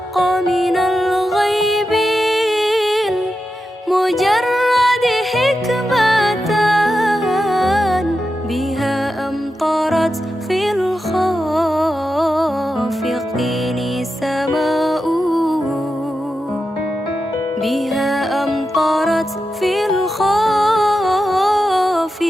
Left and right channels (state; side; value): normal; both; correlation 0.89